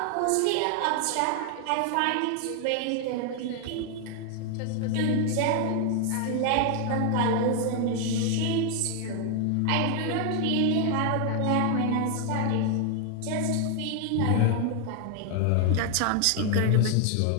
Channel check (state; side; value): different; both; correlation 0.00